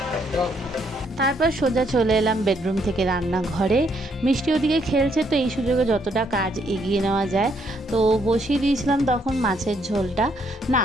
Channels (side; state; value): both; normal; correlation 0.71